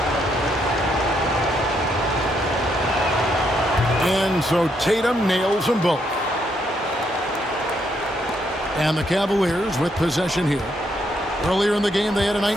And so Tatum nails them both. And the Cavaliers with possession here. Earlier in the game, they had a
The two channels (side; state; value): both; normal; correlation 0.75